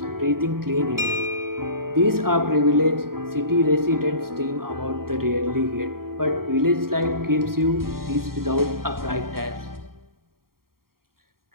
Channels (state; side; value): late; left; 0.93 ms